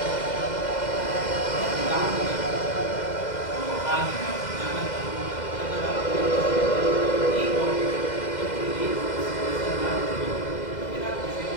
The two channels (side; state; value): right; late; 2.0 ms